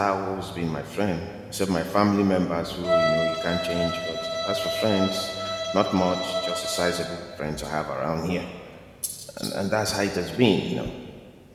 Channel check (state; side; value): identical; both; correlation 1.00